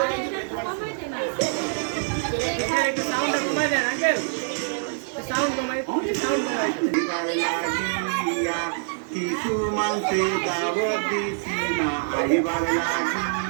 কিছু মানতে দাওয়াত দিছি না আইবার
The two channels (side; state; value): left; silent; digital silence